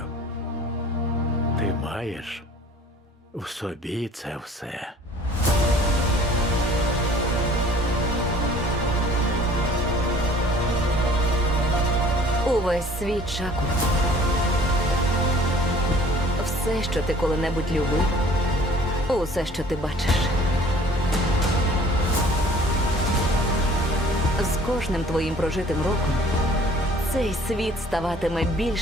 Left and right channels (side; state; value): both; normal; correlation 0.52